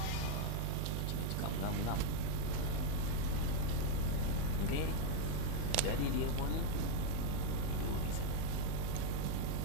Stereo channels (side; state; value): both; different; correlation 0.00